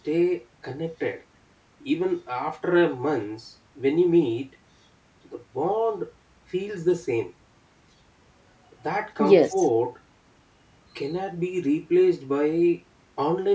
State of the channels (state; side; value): identical; both; correlation 1.00